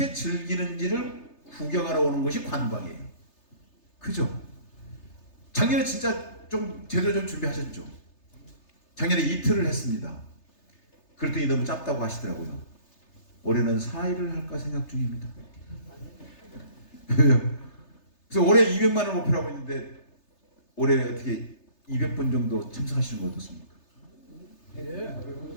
즐기는지를 구경하러 오는 것이 관광이에요. 그죠? 작년에 진짜 좀 제대로 좀 준비하셨죠? 작년에 이틀을 했습니다. 그랬더니 너무 짧다고 하시더라고요. 올해는 4일을 할까 생각 중입니다. 그래서 올해 200만을 목표로 하고 있는데 올해 어떻게 200번 정도 참석하시는 거 어떻습니까?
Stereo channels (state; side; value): late; right; 3.3 ms